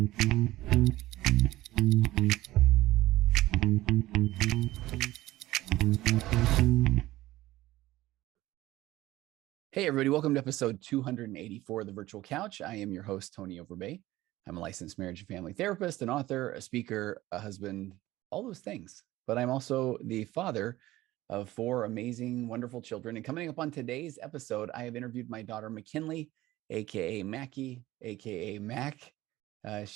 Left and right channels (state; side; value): quieter; left; 16.8 dB